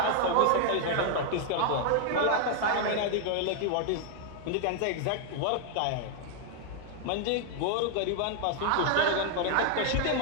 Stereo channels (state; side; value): different; both; correlation 0.00